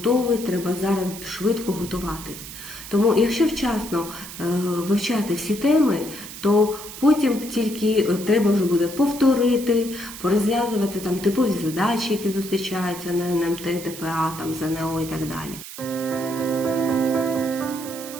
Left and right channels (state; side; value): noise; right; hiss, 12 dB below the sound